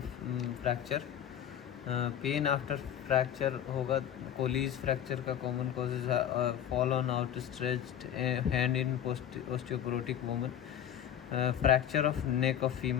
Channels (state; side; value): quieter; right; 10.0 dB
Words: fracture. Pain after fracture होगा. Colles fracture का common causes है. Fall on outstretched hand in osteoporotic woman. Fracture of neck of